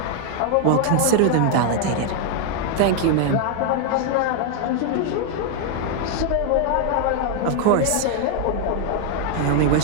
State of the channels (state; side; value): different; both; correlation 0.00